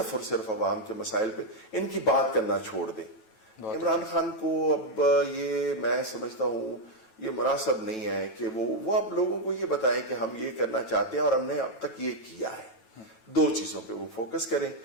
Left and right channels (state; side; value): late; right; 9.1 ms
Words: اور صرف عوام کے مسائل پہ, ان کی بات کرنا چھوڑ دیں. عمران خان کو اب یہ میں سمجھتا ہوں یہ مناسب نہیں ہے کہ وہ اب لوگوں کو یہ بتائیں کہ ہم یہ کرنا چاہتے ہیں اور ہم نے اب تک یہ کیا ہے. دو چیزوں پہ وہ فوکس کریں